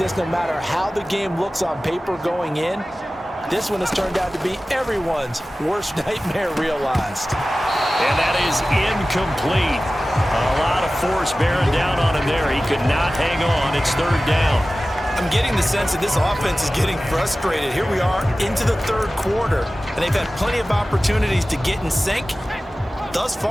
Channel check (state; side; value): normal; both; correlation 0.96